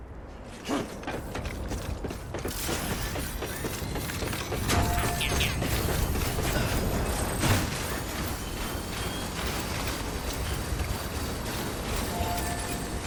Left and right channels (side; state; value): both; identical; correlation 1.00